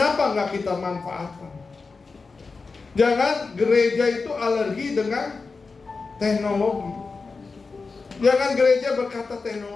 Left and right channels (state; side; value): quieter; right; 4.3 dB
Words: nggak kita manfaatkan? Jangan gereja itu alergi dengan teknologi. Jangan gereja berkata